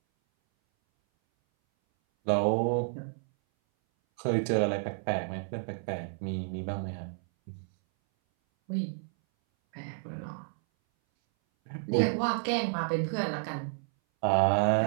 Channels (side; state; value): left; silent; 57 dB below the other